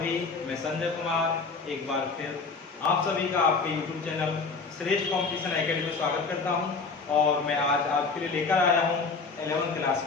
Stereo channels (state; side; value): quieter; right; 4.5 dB